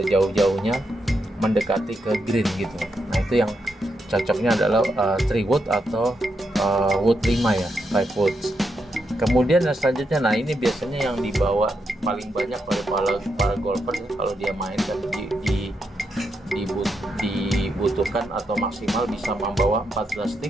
mendekati ke green gitu. Nah itu yang cocoknya adalah 3 wood atau wood 5 ya, 5 woods. Kemudian yang selanjutnya, nah ini biasanya yang dibawa paling banyak oleh para golfer kalau dia main kan dibutuhkan atau maksimal bisa membawa 14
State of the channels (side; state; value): both; normal; correlation 0.82